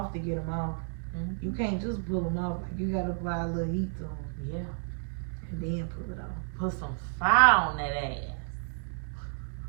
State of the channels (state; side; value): silent; left; digital silence